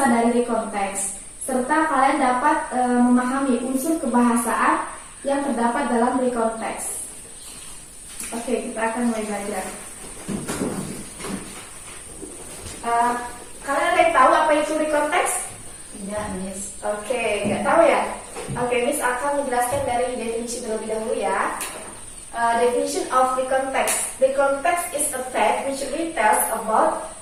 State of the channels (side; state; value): both; identical; correlation 1.00